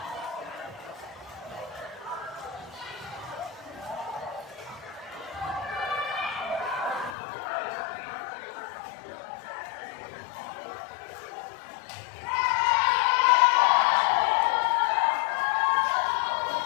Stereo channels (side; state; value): right; drops out; at 7.2 s